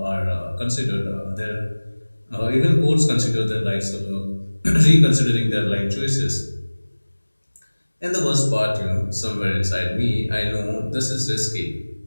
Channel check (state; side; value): inverted; both; correlation -1.00